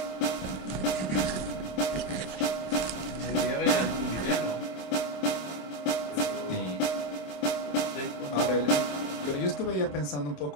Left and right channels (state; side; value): late; right; 27 ms